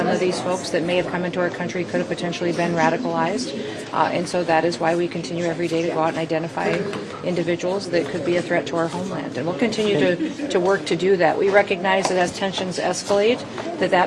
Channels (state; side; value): identical; both; correlation 1.00